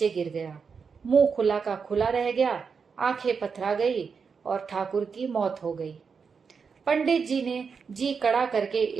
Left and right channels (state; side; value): quieter; left; 5.7 dB